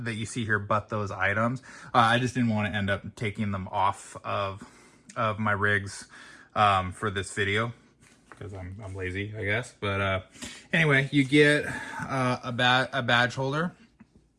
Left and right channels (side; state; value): both; identical; correlation 1.00